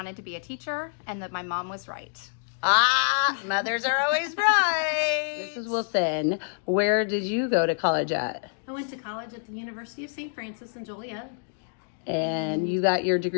to be a teacher and that my mom was right. Ah, mothers are always right. Mrs. Wilson, where did you go to college at? I went to college at the University of St. Francis in Joliet. And you got your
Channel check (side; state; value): right; silent; digital silence